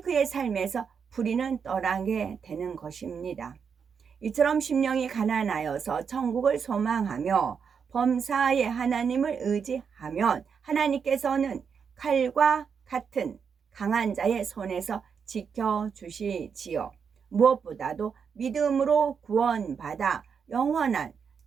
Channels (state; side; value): quieter; left; 6.5 dB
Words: 그의 삶에서 불의는 떠나게 되는 것입니다. 이처럼 심령이 가난하여서 천국을 소망하며 범사에 하나님을 의지하면 하나님께서는 칼과 같은 강한 자의 손에서 지켜주시지요. 무엇보다도 믿음으로 구원받아 영원한